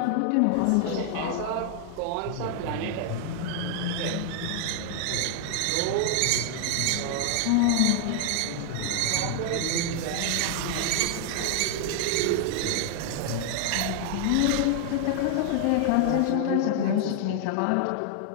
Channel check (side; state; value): both; different; correlation 0.00